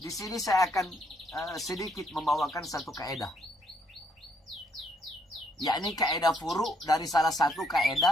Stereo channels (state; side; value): normal; both; correlation 0.71